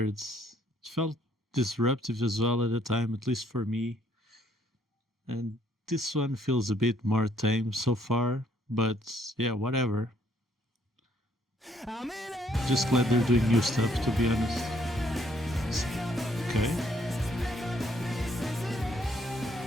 It felt disruptive as well at the time, at least for me. And this one feels a bit more tame so far, but yeah, whatever. Just glad they're doing new stuff, to be honest. Okay.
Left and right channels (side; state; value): both; normal; correlation 0.67